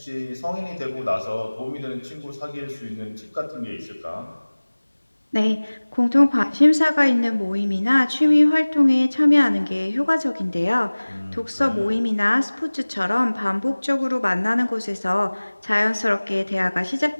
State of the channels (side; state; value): both; inverted; correlation -1.00